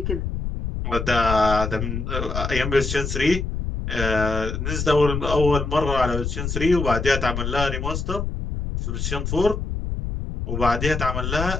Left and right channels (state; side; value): noise; left; rumble, 3 dB below the sound